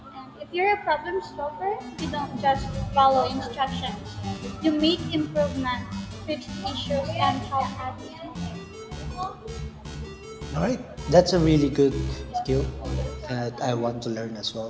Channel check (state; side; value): identical; both; correlation 1.00